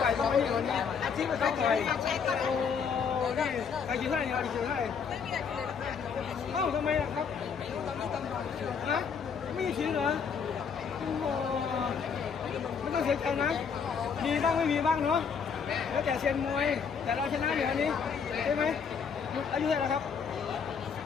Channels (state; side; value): quieter; right; 6.4 dB